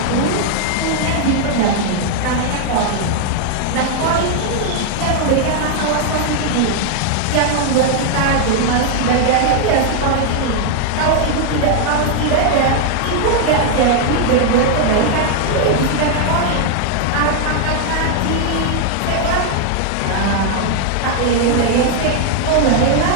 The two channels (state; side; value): different; both; correlation 0.00